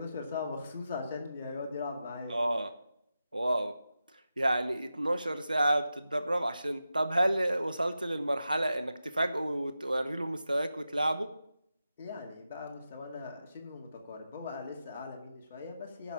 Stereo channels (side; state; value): both; inverted; correlation -0.90